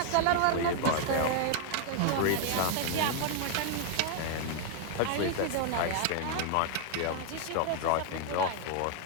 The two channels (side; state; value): both; different; correlation 0.00